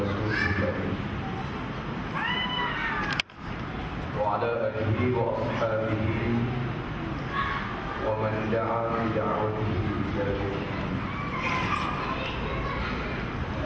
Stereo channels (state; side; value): identical; both; correlation 1.00